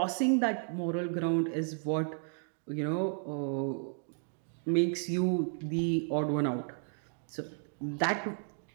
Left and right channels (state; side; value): silent; left; 56 dB below the other